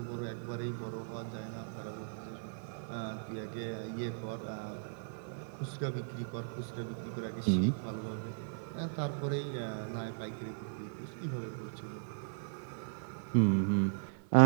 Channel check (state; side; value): silent; left; digital silence